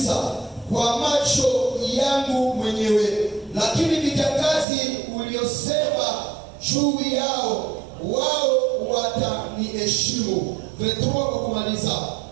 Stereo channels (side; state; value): left; drops out; at 4.7 s